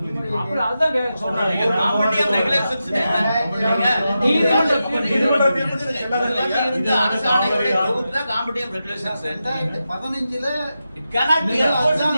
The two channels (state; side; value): inverted; both; correlation -0.90